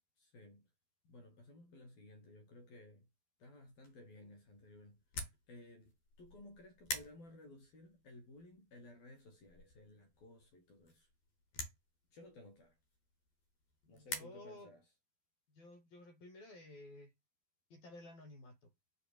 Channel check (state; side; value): late; right; 12 ms